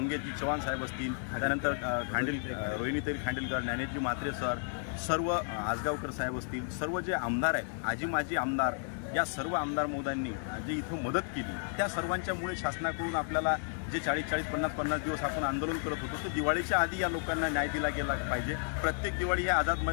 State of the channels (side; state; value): right; silent; 56 dB below the other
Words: चव्हाण साहेब असतील, त्यानंतर रोहिणीताई खांडेलकर, ज्ञानेशजी म्हात्रे सर, सर्व आजगावकर साहेब असतील, सर्व जे आमदार आहेत, आजी माजी आमदार, या सर्व आमदार महोदयांनी जे इथं मदत केली त्या सर्वांच्यामुळे शासनाकडून आपल्याला जे 40-40, 50-50 दिवस आपण आंदोलन करत होतो तर दिवाळीच्या आधी या लोकांना न्याय दिला गेला पाहिजे. प्रत्येक दिवाळी हे आझाद